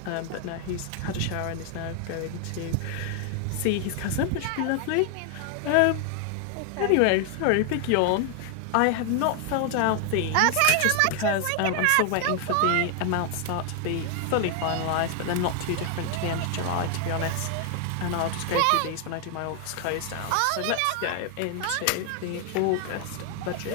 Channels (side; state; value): both; different; correlation 0.00